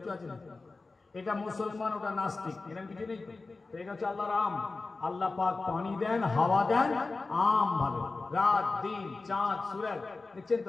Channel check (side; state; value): right; quieter; 3.7 dB